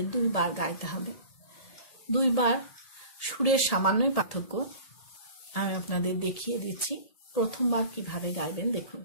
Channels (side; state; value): right; late; 1.8 ms